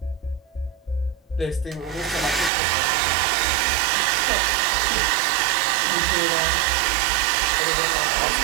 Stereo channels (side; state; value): left; drops out; at 2.5 s